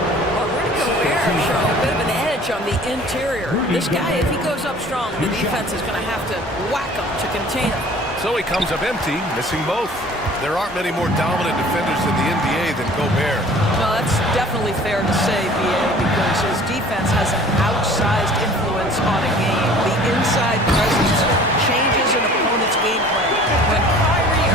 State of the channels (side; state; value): both; normal; correlation 0.49